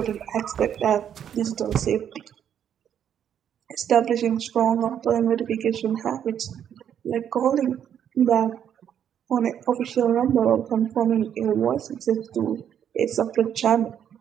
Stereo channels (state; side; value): quieter; left; 9.2 dB